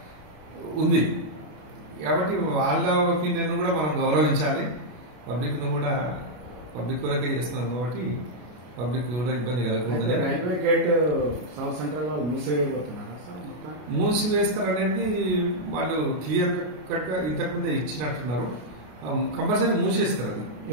ఉంది. కాబట్టి వాళ్ళ ఒపీనియన్ కూడా మనం గౌరవించాలి, పబ్లిక్ ను కూడా పబ్లిక్ కొరకే చేస్తున్నాం కాబట్టి పబ్లిక్ కూడా ఇబ్బంది కలగకూడదని. మూసివేస్తారనేది వాళ్ళు క్లియర్ కట్ గా ఇంతకుముందే ఇచ్చినట్టున్నారు. కంపల్సరీ మూసేస్తారు. అది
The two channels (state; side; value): late; left; 33 ms